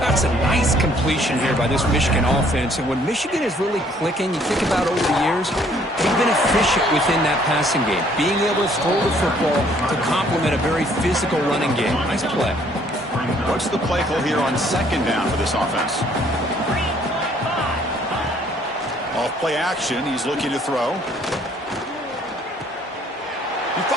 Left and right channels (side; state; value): both; normal; correlation 0.62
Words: a nice completion here by this Michigan offense. And when Michigan is really clicking, you think about over the years, they've been efficient within that passing game, being able to throw the football to complement a very physical running game. Nice play. What's the play call here on second down for this offense? Off play action. He's looking to throw. He